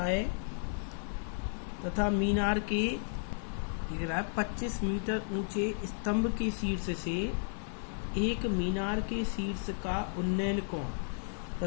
है, तथा मीनार के 25 मीटर ऊंचे स्तंभ के शीर्ष से एक मीनार के शीर्ष का उन्नयन कोण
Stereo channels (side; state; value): right; silent; 55 dB below the other